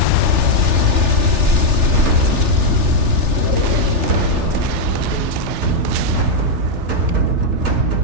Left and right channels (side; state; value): left; late; 3.4 ms